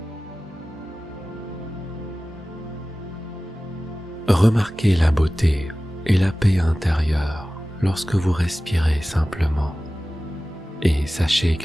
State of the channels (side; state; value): both; normal; correlation 0.96